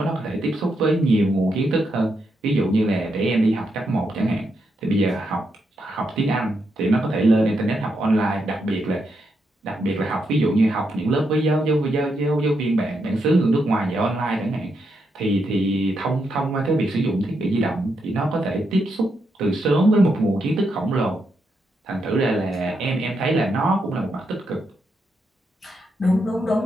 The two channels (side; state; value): both; normal; correlation 0.81